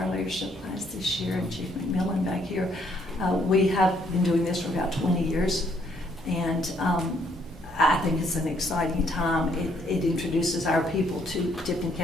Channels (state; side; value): normal; both; correlation 0.68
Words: leadership class this year, and Chief McMillan back here. We have been doing this for about 20 years, and I think it's an exciting time. It introduces our people to Tipton